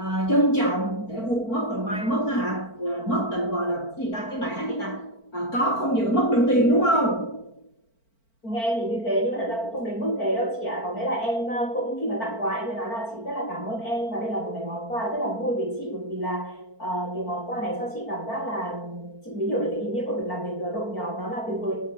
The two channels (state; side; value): late; right; 4.4 ms